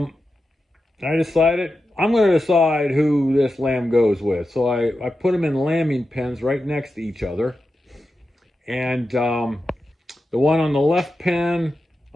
decided I'm going to decide who this lamb goes with. So I put them in lambing pens right next to each other. And the one on the left pen,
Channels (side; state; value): both; normal; correlation 0.90